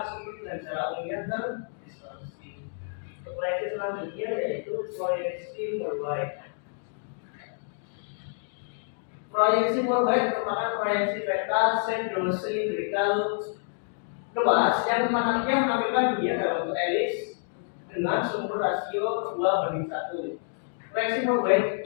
sudut dan jarak umumnya dan distorsi. Proyeksi selanjutnya yaitu proyeksi worldwide. Proyeksi worldwide merupakan proyeksi peta sedrosilindrikal luas yang menampilkan dunia dalam bentuk elips dengan sumber rasio 2:1. Proyeksi worldwide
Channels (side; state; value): right; silent; digital silence